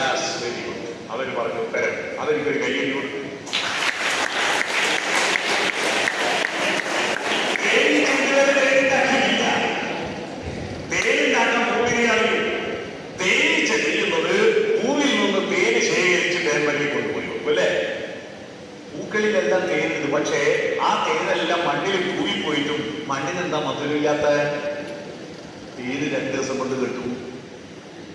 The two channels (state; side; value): identical; both; correlation 1.00